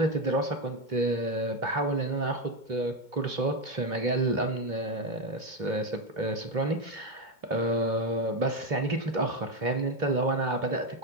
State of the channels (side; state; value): left; late; 2.2 ms